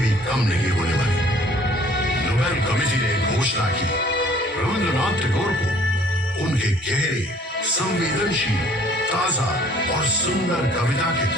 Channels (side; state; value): both; normal; correlation 0.56